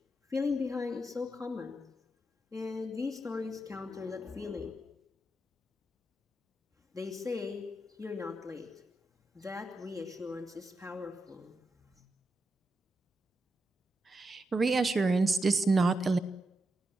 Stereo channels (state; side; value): normal; both; correlation 0.86